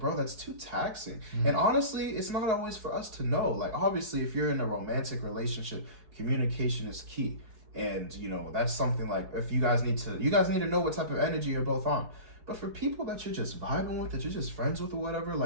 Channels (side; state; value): left; late; 4.7 ms